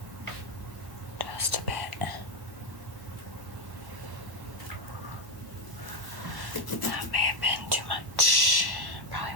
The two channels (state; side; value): late; left; 1.1 ms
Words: Just a bit. That may have been too much.